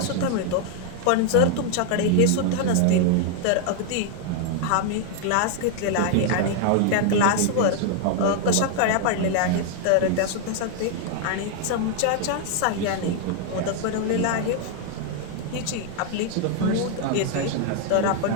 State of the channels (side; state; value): both; different; correlation 0.00